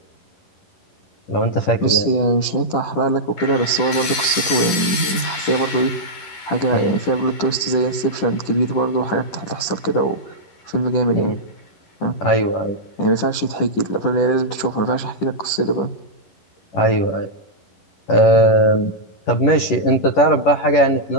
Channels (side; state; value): right; late; 11 ms